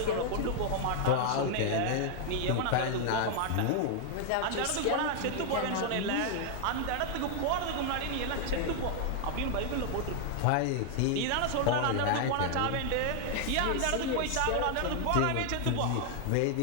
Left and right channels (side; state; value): both; different; correlation 0.00